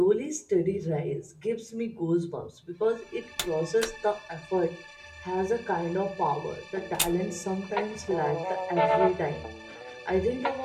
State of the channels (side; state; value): both; identical; correlation 1.00